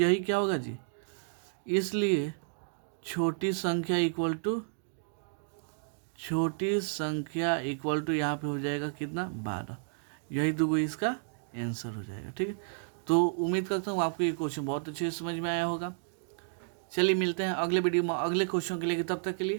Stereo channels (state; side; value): silent; left; digital silence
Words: क्या होगा जी, इसलिए छोटी संख्या इक्वल टू यहाँ पे हो जाएगा कितना 12। यही दो इसका आंसर हो जाएगा। ठीक है, तो उम्मीद करता हूँ आपको ये क्वेश्चन बहुत अच्छे से समझ में आया होगा। चलिए मिलते हैं अगले वीडियो में अगले क्वेश्चन के लिए, तब तक के